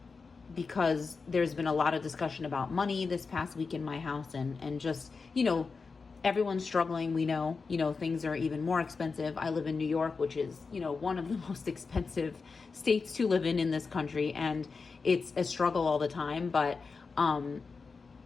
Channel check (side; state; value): right; quieter; 4.6 dB